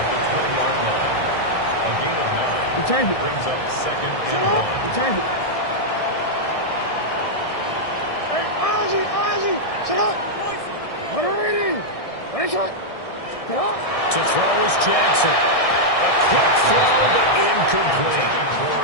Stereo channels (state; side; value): late; right; 1.6 ms